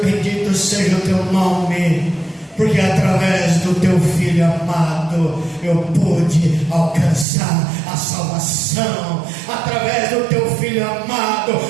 bendito seja o Teu nome, porque através do Teu Filho amado eu pude alcançar a salvação. Através do Teu Filho amado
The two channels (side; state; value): left; drops out; at 7.2 s